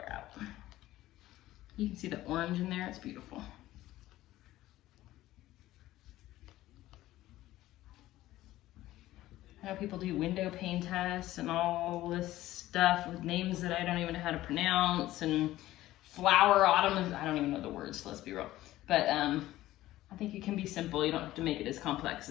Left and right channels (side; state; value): right; quieter; 15.5 dB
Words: out. You can see the orange in there, it's beautiful. I know people do window pane tests and all this stuff with names that I don't even know how to pronounce, and flower autumn, I don't even know the words, let's be real. But I think it can be simple. You don't have to make it as complex